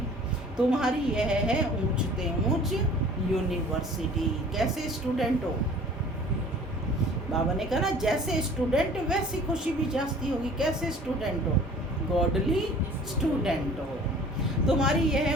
तुम्हारी यह है ऊंचते ऊंच यूनिवर्सिटी। कैसे स्टूडेंट हो, बाबा ने कहा ना, जैसे स्टूडेंट वैसी खुशी भी जास्ती होगी। कैसे स्टूडेंट हो, गॉडली स्टूडेंट हो। तुम्हारी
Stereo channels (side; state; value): both; normal; correlation 0.48